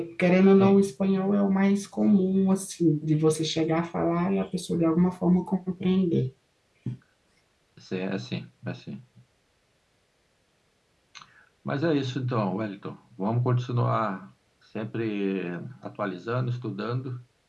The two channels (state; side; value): identical; both; correlation 1.00